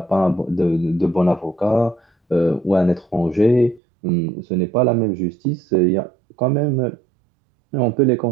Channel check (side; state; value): left; drops out; at 3.8 s